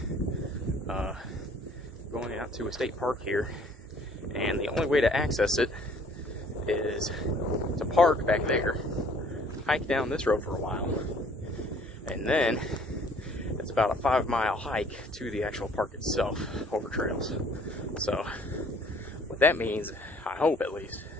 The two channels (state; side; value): normal; both; correlation 0.57